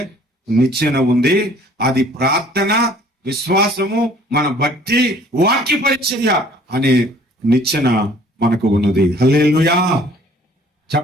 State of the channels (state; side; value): normal; both; correlation 0.55